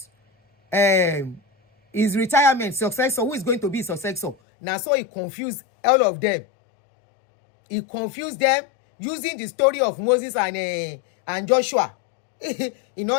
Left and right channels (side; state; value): right; drops out; at 4.4 s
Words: his retirement successor, who is going to be his successor? Now, so he confused all of them. He confused them using the story of Moses and Joshua. In